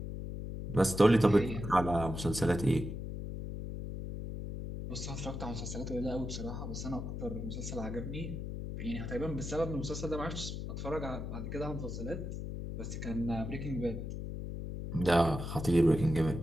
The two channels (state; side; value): noise; left; hum, 6 dB below the sound